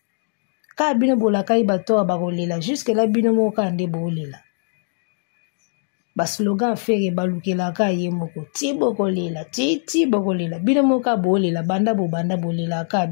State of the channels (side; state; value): right; silent; digital silence